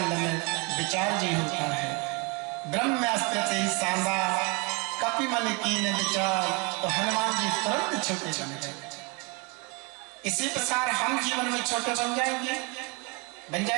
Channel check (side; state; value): left; quieter; 30.1 dB